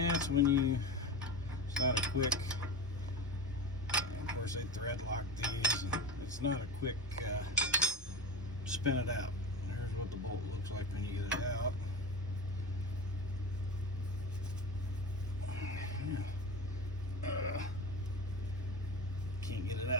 when you, it's not a quick, of course they thread lock these, and it's not a quick spin it out. Here's what the bolt looks like when you get it out. Can't get it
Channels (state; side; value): normal; both; correlation 0.26